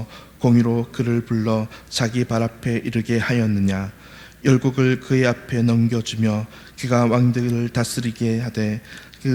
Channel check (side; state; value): both; identical; correlation 1.00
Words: 공의로 그를 불러 자기 발 앞에 이르게 하였느냐. 열국을 그의 앞에 넘겨주며 그가 왕들을 다스리게 하되